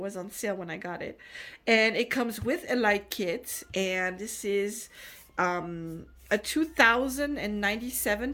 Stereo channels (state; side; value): identical; both; correlation 1.00